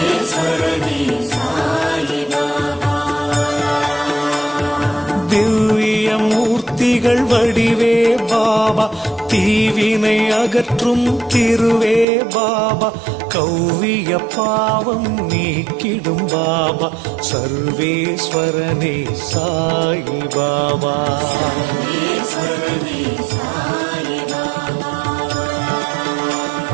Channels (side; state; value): left; drops out; at 12.1 s